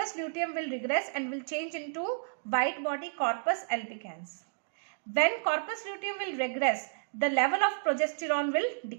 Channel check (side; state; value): left; silent; digital silence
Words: luteum will regress and will change into white body, corpus albicans. When corpus luteum will regress, the level of progesterone will